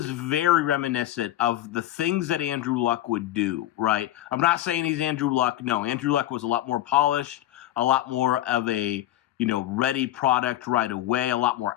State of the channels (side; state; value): right; quieter; 13.9 dB